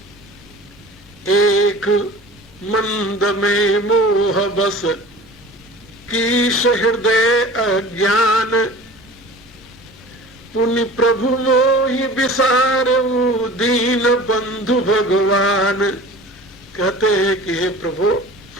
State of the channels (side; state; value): both; normal; correlation 0.40